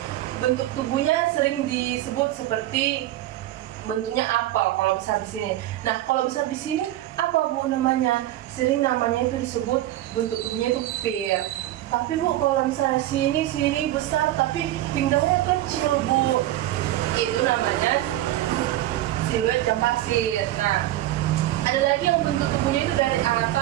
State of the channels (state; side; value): quieter; left; 14.5 dB